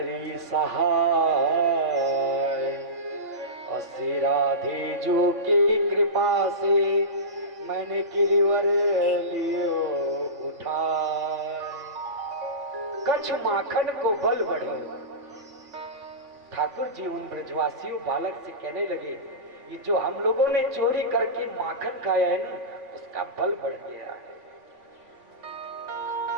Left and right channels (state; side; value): late; left; 3.5 ms